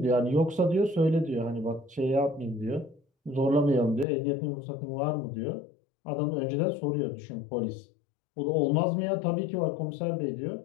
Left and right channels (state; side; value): drops out; right; at 4.0 s